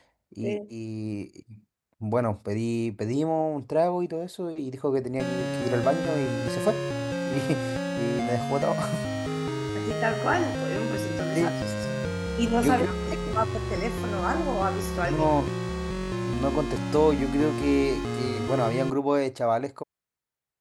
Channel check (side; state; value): both; identical; correlation 1.00